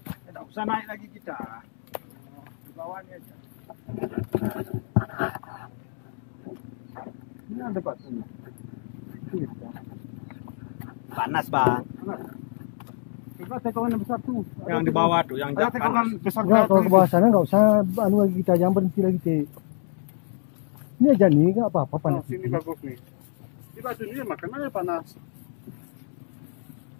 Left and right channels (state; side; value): silent; right; 60 dB below the other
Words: Tidak usah naik lagi kita. Di bawahnya aja. Ini ada batu ni. Panas bang. Coba tekongan yang besar tu. Yang di bawah tuh, yang Ada panas. tekongan besar. Enggak, kalau ke bawah sana enggak usah anu lagi kita, jangan berhenti lagi, Cik. Ini aja nih, enggak apa-apa Oh, panas. sini bagus nih. Di batu ni makan mana panas.